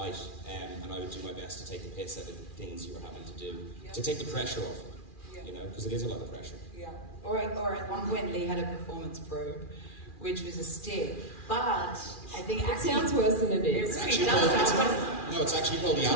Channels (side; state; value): right; late; 2.4 ms